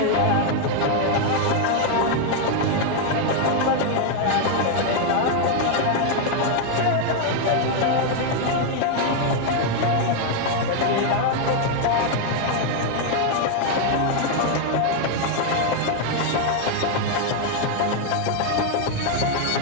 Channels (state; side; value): different; both; correlation 0.01